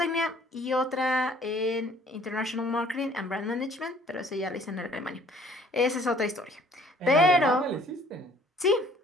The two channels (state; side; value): normal; both; correlation 0.57